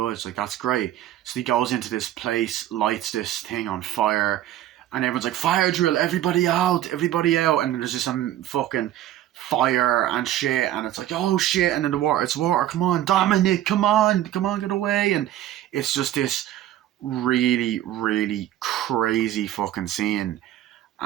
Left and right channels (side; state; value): left; quieter; 12.8 dB